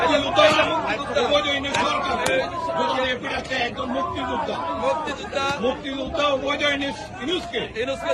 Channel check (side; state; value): both; identical; correlation 1.00